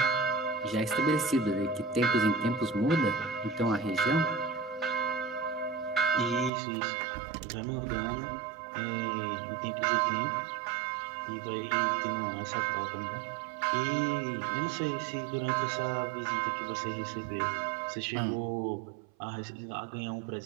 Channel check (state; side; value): drops out; left; at 6.5 s